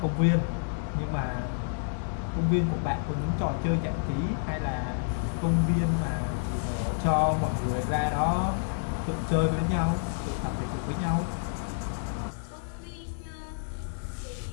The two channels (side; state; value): right; silent; 58 dB below the other